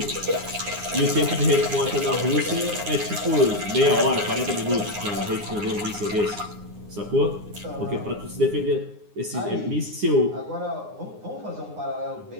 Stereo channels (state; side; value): late; left; 9.7 ms